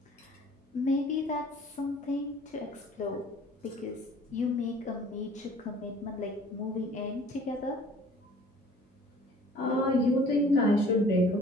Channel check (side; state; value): both; normal; correlation 0.51